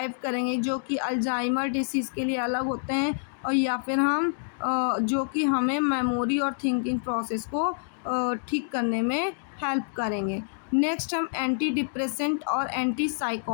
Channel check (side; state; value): right; silent; digital silence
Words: करेंगे, जो कि अल्जाइमर डिसीज़ के लिए अलग होते हैं, और या फिर हम जो कि हमें मेमोरी और थिंकिंग प्रोसेस को ठीक करने में हेल्प करेंगे। नेक्स्ट हम एंटी डिप्रेसेंट और एंटी